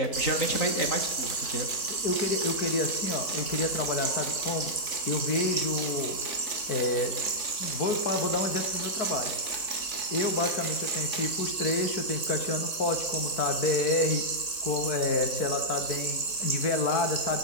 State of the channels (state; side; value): late; right; 3.7 ms